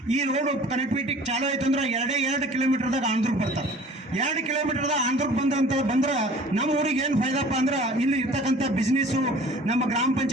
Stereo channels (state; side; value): normal; both; correlation 0.48